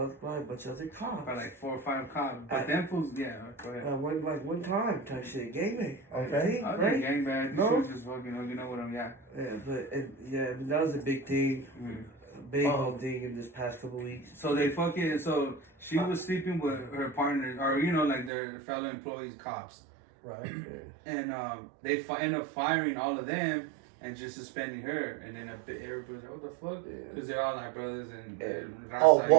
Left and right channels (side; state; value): left; drops out; at 18.3 s